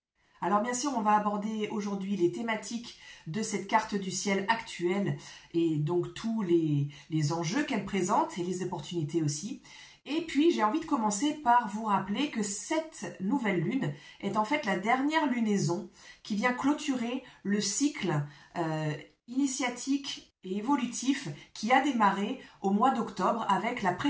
Alors bien sûr, on va aborder aujourd'hui les thématiques de cette carte du ciel actuelle et donc tous les enjeux qu'elle présente et les opportunités aussi. Et puis, j'ai envie de commencer par vous rappeler que cette nouvelle lune est en fait la dernière lunaison qui vient clôturer le cycle initiatique et évolutif qui a démarré au mois d'octobre avec la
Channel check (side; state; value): both; identical; correlation 1.00